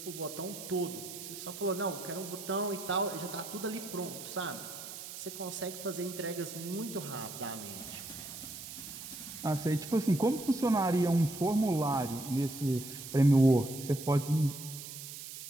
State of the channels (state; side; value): noise; right; hiss, 11 dB below the sound